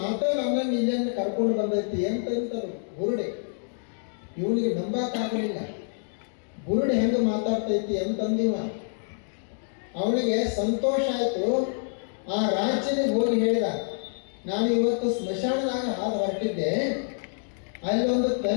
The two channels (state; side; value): silent; right; digital silence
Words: ನಮ್ಮನ್ನು ಇಲ್ಲಿಂದ ಕರ್ಕೊಂಡು ಬಂದೈತಿ ಅಂತಂತರು ಬುರುಡಿ. ಇವನಿಗೆ ನಂಬಕ್ಕಾಗಲಿಲ್ಲ, ಬುರುಡಿ ಹೆಂಗೆ ಮಾತಾಡ್ತೈತಿ ಅಂತಂದಿವ. ಅವನಿಗೆ ಸಂತೋಷ ಆಯಿತು. ಆ ರಾಜ್ಯನಿಗೆ ಹೋಗಿ ಹೇಳಿದ, ನಾನು ಇವತ್ತು ಸ್ಮಶಾನದಾಗ ಹಾದು ಹೊರಟಿದ್ದೆ, ಅಲ್ಲಿ ಒಂದು